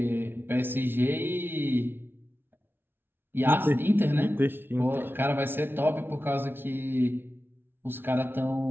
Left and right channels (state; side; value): late; left; 0.11 ms